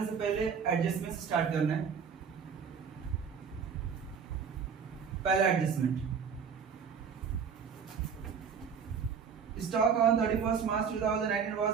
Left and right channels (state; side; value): quieter; left; 6.7 dB